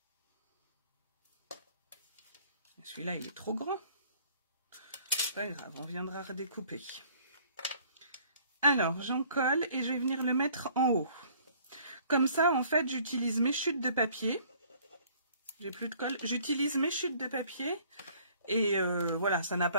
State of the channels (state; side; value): inverted; both; correlation -0.57